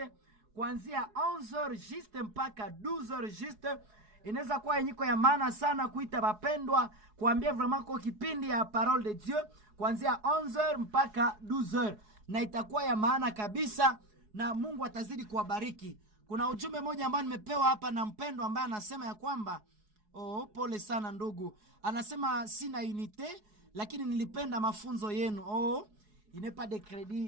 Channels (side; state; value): left; late; 4.7 ms